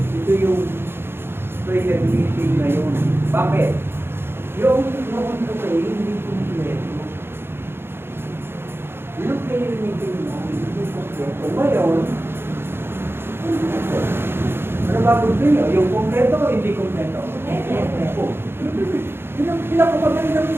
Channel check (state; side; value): late; left; 0.11 ms